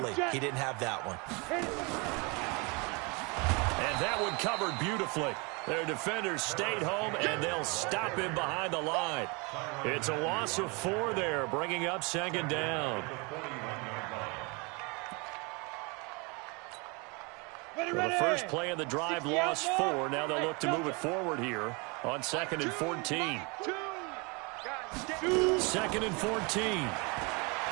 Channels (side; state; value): left; quieter; 29.5 dB